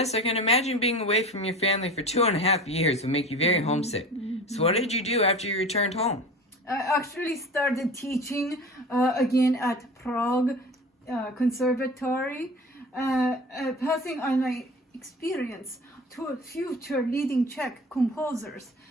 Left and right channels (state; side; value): normal; both; correlation 0.36